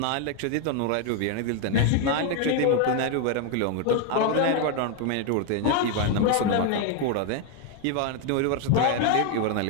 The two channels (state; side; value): different; both; correlation 0.01